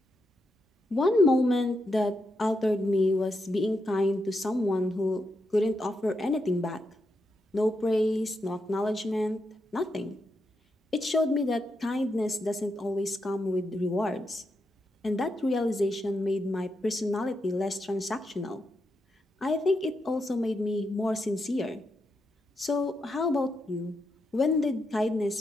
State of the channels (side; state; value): both; normal; correlation 0.84